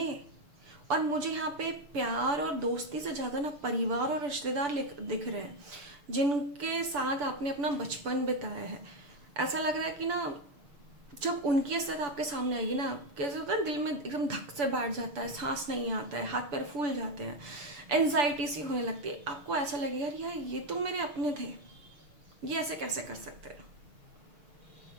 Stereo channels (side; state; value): left; late; 6.9 ms